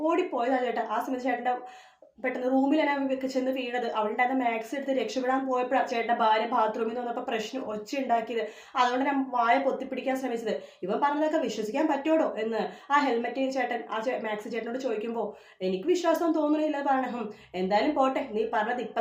ഓടിപ്പോയതാണ് ചേട്ടാ. ആ സമയത്ത് ചേട്ടൻ്റെ പെട്ടെന്ന് റൂമിലാണ് ചെന്ന് വീണത്. അവിടെ ഉണ്ടായിരുന്ന മാക്സ് എടുത്ത് രക്ഷപ്പെടാൻ പോയപ്പോഴാണ് ചേട്ടൻ്റെ ഭാര്യ ബാത്റൂമിൽ നിന്ന് വന്നപ്പോൾ പ്രശ്നം ഒച്ച ഉണ്ടാക്കിയത്. അതുകൊണ്ട് ഞാൻ വായ പൊത്തിപ്പിടിക്കാൻ ശ്രമിച്ചത്. ഇവൻ പറഞ്ഞതൊക്കെ വിശ്വസിക്കാൻ പറ്റുമോ എന്ന് ആ ഹെൽമെറ്റ് ചേട്ടൻ മാക്സ് ചേട്ടനോട് ചോദിക്കുമ്പോൾ എനിക്ക് വിശ്വാസം തോന്നുന്നില്ല പറയണം. എന്തായാലും പോട്ടെ, നീ പറഞ്ഞത്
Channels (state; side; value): identical; both; correlation 1.00